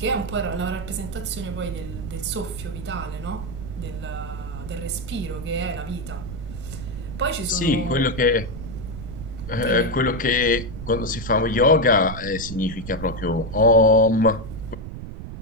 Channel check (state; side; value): noise; right; rumble, 9 dB below the sound